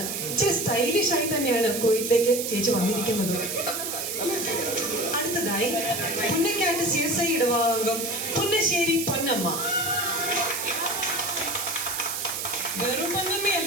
ഇച്ചിരി സ്റ്റൈലിഷ് ആയി തന്നെയാണ് കോയിറ്റിലേക്ക് ചേച്ചി വന്നിരിക്കുന്നത്. അടുത്തതായി പുന്നക്കാട്ട് CSI ഇടവാംഗം പുന്നശ്ശേരി പൊന്നമ്മ. വെറും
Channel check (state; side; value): noise; right; hiss, 4 dB below the sound